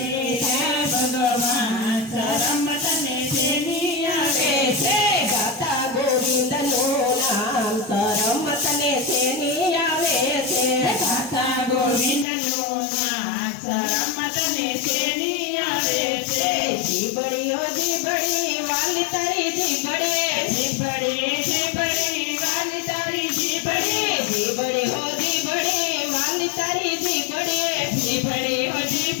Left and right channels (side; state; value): right; drops out; at 12.2 s